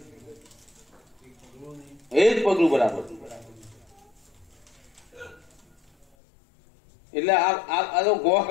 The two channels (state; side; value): drops out; right; at 6.1 s